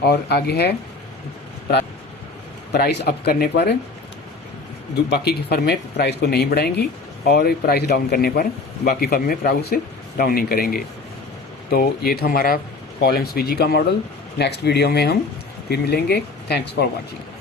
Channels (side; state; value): right; quieter; 3.7 dB